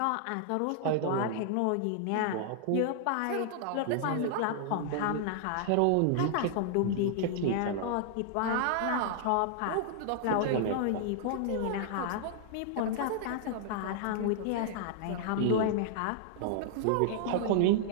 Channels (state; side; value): different; both; correlation -0.01